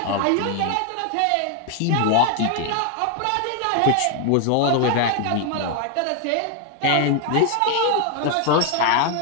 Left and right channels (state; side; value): different; both; correlation 0.00